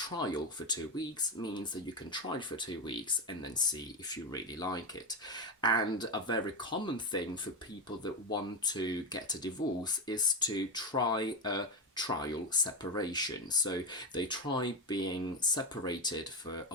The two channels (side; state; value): both; normal; correlation 0.14